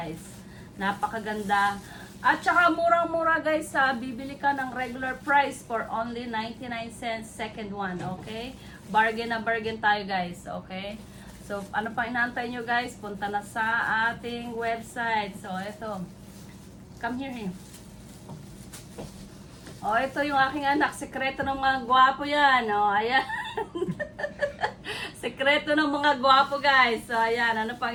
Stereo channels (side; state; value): both; identical; correlation 1.00